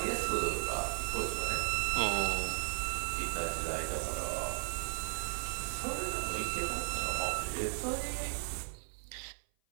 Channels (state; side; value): silent; left; 54 dB below the other